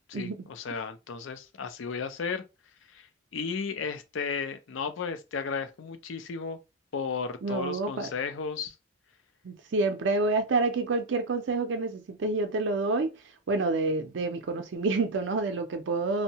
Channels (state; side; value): normal; both; correlation 0.01